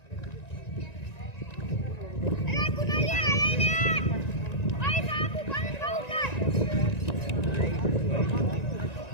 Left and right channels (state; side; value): late; right; 1.9 ms